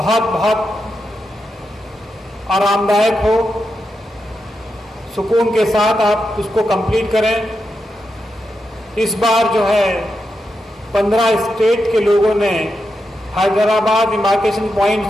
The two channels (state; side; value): normal; both; correlation 0.86